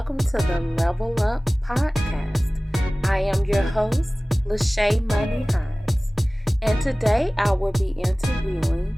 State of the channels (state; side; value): normal; both; correlation 0.98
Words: to the Level Up Podcast. I am your host, Lachey Money Hines, and today I will be interviewing